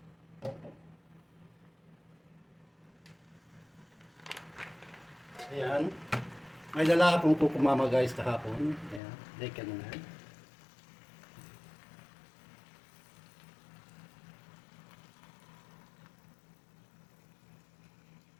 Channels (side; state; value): right; drops out; at 9.0 s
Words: Ayan. May dala akong kukumama guys kahapon. Ayan, like ano na. Ayan.